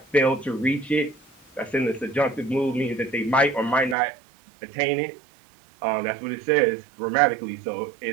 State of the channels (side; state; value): left; drops out; at 4.0 s